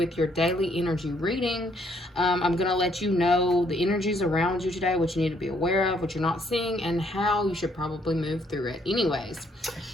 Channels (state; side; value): normal; both; correlation 0.69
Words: your daily energy reading. I'm gonna let you know the energies around you today, what you need to be aware of, what you're not seeing, and how you should probably move through it. Anyways,